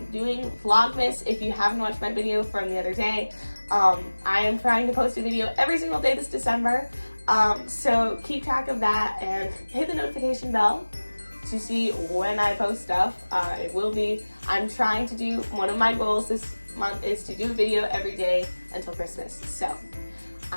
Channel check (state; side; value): inverted; both; correlation -1.00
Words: doing Vlogmas. If you haven't watched my video from the other day, I am trying to post a video every single day this December. So keep track of that and hit the notification bell to see when I post stuff. It will be, I'm trying to do, one of my goals this month is to do a video every day until Christmas. So